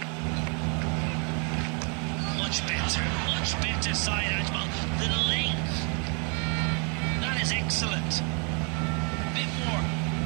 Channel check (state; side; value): quieter; left; 36.4 dB